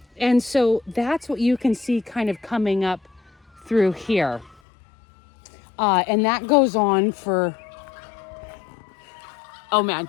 And so that's what you can see kind of coming up through here. And that goes on for, oh man,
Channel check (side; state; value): right; drops out; at 4.5 s